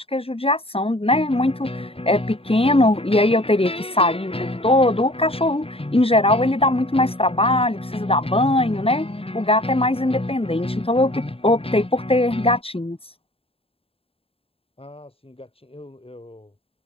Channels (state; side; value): late; right; 0.27 ms